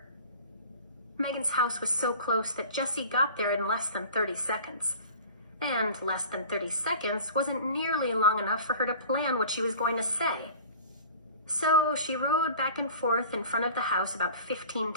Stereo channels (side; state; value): both; inverted; correlation -0.42